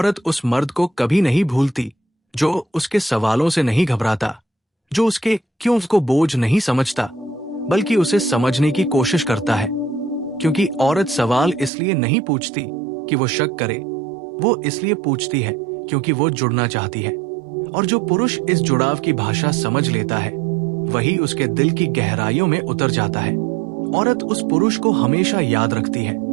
उस मर्द को कभी नहीं भूलती जो उसके सवालों से नहीं घबराता, जो उसके क्यों को बोझ नहीं समझता, बल्कि उसे समझने की कोशिश करता है। क्योंकि औरत सवाल इसलिए नहीं पूछती कि वो शक करे, वो इसलिए पूछती है क्योंकि वो जुड़ना चाहती है। और जो पुरुष इस जुड़ाव की भाषा समझ लेता है, वही उसके दिल की गहराइयों में उतर जाता है। औरत उस पुरुष को हमेशा याद रखती है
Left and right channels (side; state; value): left; drops out; at 11.7 s